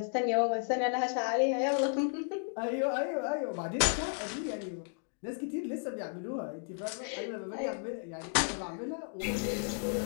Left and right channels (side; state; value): right; silent; 55 dB below the other